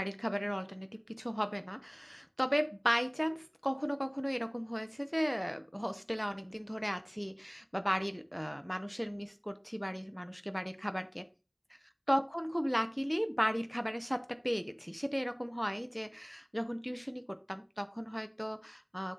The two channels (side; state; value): both; identical; correlation 1.00